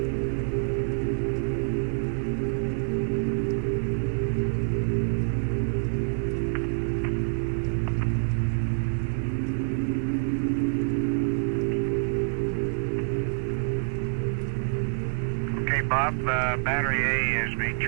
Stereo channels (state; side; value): silent; left; 60 dB below the other